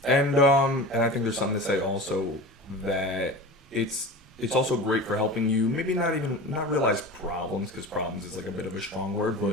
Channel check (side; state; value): both; normal; correlation 0.33